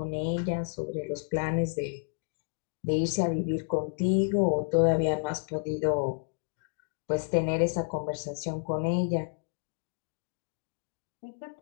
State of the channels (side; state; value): right; silent; digital silence